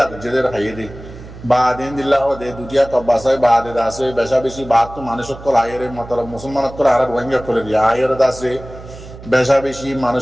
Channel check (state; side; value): noise; right; hum, 16 dB below the sound